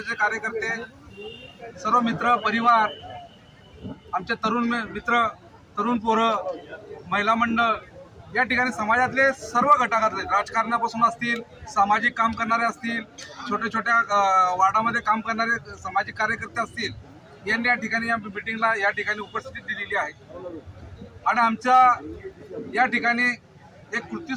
कार्यकर्ते, सर्व मित्र परिवार, आमचे तरुण मित्र, तरुण पोरं, महिला मंडळ या ठिकाणी समाजातले सर्व घटकातले, राजकारणापासून असतील, सामाजिक काम करणारे असतील, छोट्या छोट्या वार्डामध्ये काम करणारे सामाजिक कार्यकर्ते असतील, यांनी या ठिकाणी या मीटिंगला या ठिकाणी उपस्थिती दिलेली आहे आणि आमच्या या ठिकाणी एक कृती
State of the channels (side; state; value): both; identical; correlation 1.00